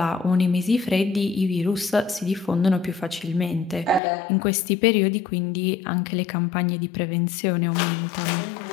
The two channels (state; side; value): drops out; right; at 4.0 s